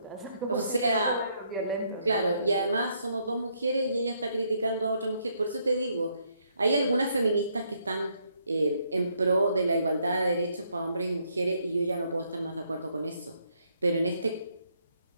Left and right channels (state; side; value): inverted; both; correlation -0.72